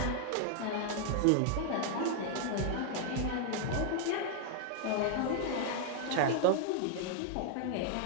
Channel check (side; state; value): both; different; correlation 0.00